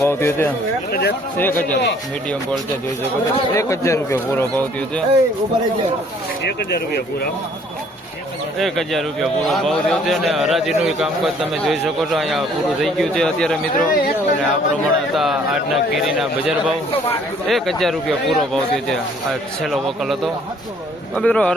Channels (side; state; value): both; normal; correlation 0.59